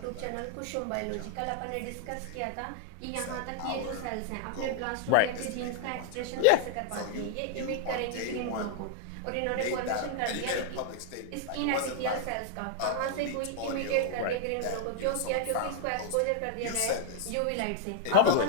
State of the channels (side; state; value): both; different; correlation 0.00